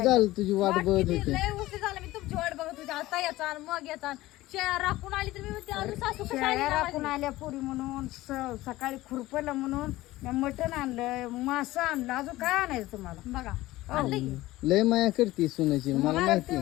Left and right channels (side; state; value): right; quieter; 17.5 dB